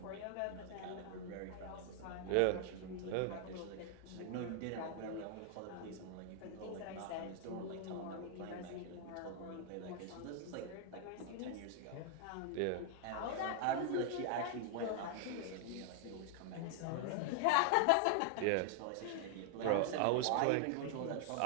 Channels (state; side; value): different; both; correlation 0.00